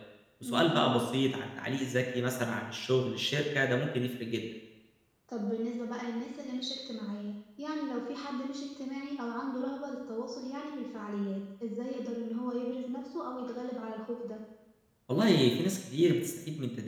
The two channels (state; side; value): identical; both; correlation 1.00